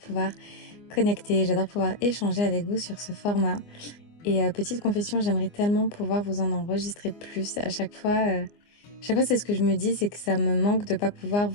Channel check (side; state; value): right; late; 24 ms